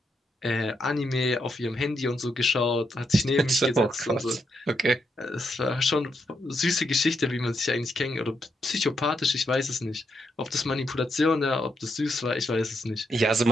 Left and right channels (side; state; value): both; normal; correlation 0.80